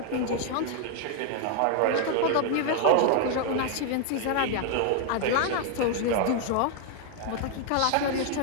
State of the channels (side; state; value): both; different; correlation 0.00